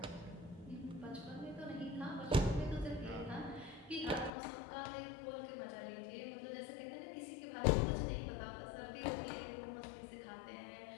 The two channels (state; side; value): drops out; right; at 4.3 s